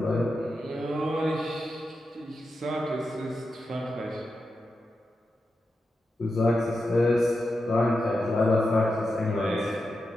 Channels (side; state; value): both; normal; correlation 0.89